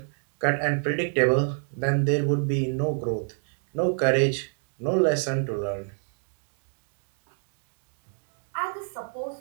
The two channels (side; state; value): left; silent; 57 dB below the other